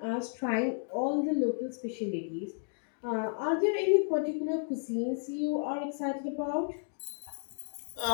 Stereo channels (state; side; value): silent; right; digital silence